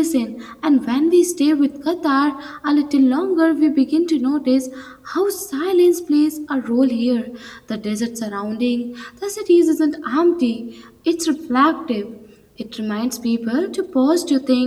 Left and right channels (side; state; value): both; identical; correlation 1.00